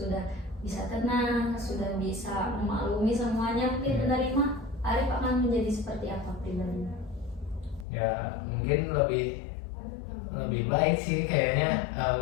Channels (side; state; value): right; drops out; at 7.9 s